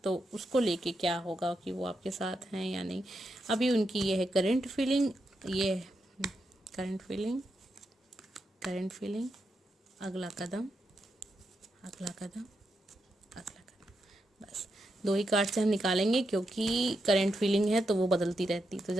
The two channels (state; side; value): normal; both; correlation 0.85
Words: तो उसको लेके क्या होगा कि वो आपके साथ हैं या नहीं। अभी उनकी ये है करंट फीलिंग, ये करंट फीलिंग, करंट फीलिंग, अगला कदम, अगला कदम, अगला कदम। बस 2 ही कार्ड से हम निकालेंगे, क्योंकि करंट फीलिंग है तो वो बदलती रहती, तो